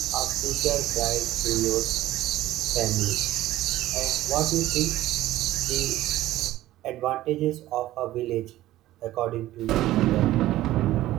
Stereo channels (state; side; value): quieter; left; 15.3 dB